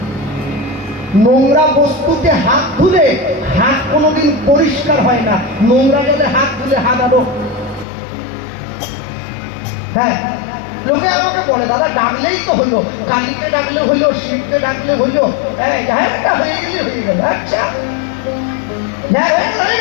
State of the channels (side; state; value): right; drops out; at 7.9 s